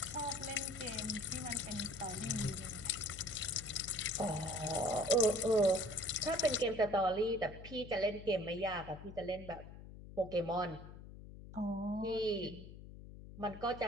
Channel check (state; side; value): noise; left; hum, 14 dB below the sound